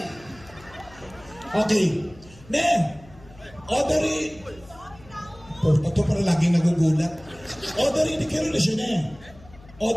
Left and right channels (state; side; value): noise; left; hum, 22 dB below the sound